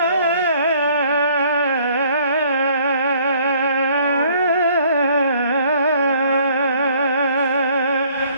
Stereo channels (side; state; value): both; inverted; correlation -0.59